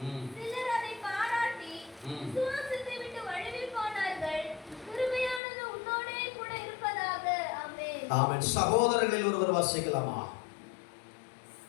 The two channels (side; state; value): right; drops out; at 5.4 s